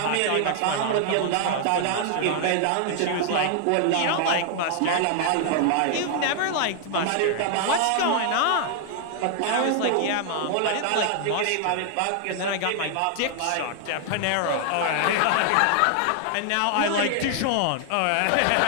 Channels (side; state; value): both; different; correlation 0.00